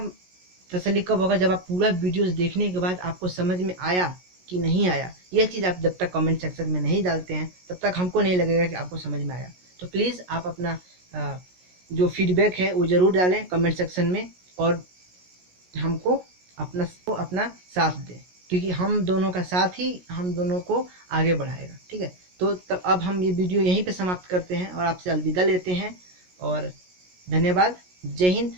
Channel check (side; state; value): left; late; 17 ms